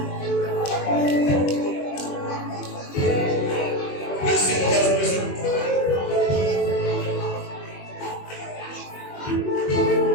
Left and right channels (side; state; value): right; late; 21 ms